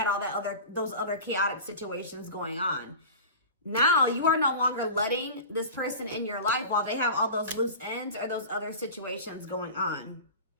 all that those other chaotic situations going on. Now you are no longer letting this person in your life while they have all those loose ends or those other situations going on.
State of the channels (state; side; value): inverted; both; correlation -0.34